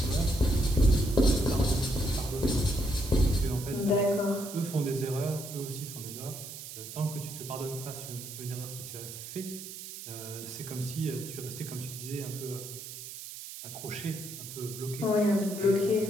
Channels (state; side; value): noise; right; hiss, 11 dB below the sound